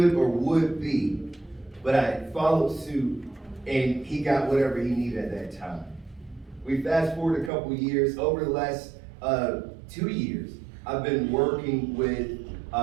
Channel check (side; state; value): left; drops out; at 7.5 s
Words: or would be, but I followed suit, and he got whatever he needed at that time. We fast forward a couple years. Over the last 2 years, I've been working with